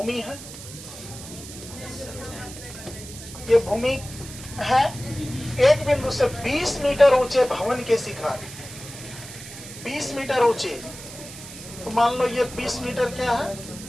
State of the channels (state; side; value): noise; right; hiss, 14 dB below the sound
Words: है, ये भूमि है, एक बिंदु से 20 मीटर ऊंचे भवन के शिखर, 20 मीटर ऊंचे, तो मान लो ये 20 मीटर क्या है?